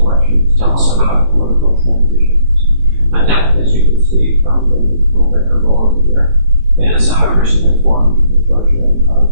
tell us about political transitions? ADEPT, as you can see from the little banner below me here, is a recently formed consortium of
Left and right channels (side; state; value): left; late; 18 ms